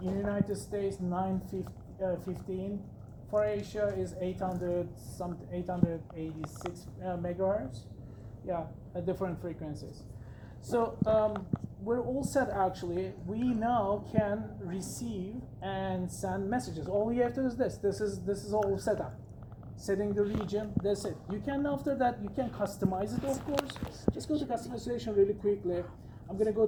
in the United States 915, for Asia is 886 megahertz. Yeah, different frequencies. So we're all set actually. We now can receive and send messages. All we have to do is this. This is all set up. Setting the region, that's it. You can, after that, you can customize it, of course. Just go to customization really quickly. I'm gonna go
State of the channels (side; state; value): both; identical; correlation 1.00